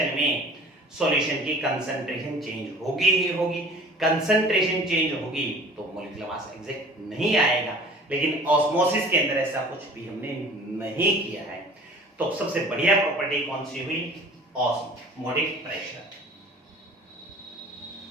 में सॉल्यूशन की कंसंट्रेशन चेंज होगी ही होगी। कंसंट्रेशन चेंज होगी तो मॉलिक्यूलर मास एग्जैक्ट नहीं आएगा, लेकिन ऑस्मोसिस के अंदर ऐसा कुछ भी हमने नहीं किया है। तो सबसे बढ़िया प्रॉपर्टी कौन सी हुई, osmotic pressure.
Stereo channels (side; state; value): both; normal; correlation 0.46